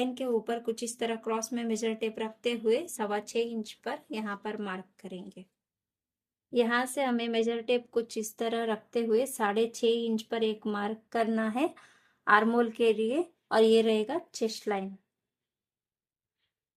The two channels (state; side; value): identical; both; correlation 1.00